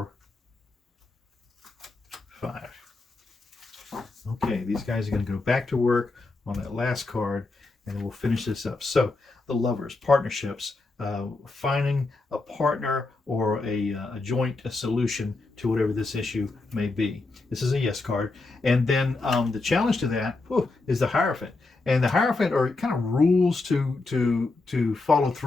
5. Okay, these guys are going to go back to work on that last card, and then we'll finish this up. So, the Lovers, partnerships, finding a partner or a joint solution to whatever this issue may be. This is a yes card. And then the challenge to that is the Hierophant. And the Hierophant are kind of rules to follow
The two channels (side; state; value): right; quieter; 3.4 dB